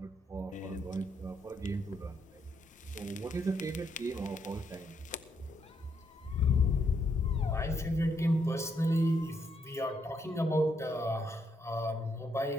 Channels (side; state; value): both; normal; correlation 0.76